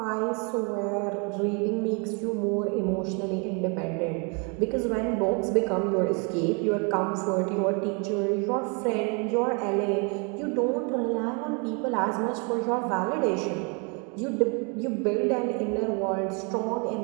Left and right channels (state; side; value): quieter; left; 34.6 dB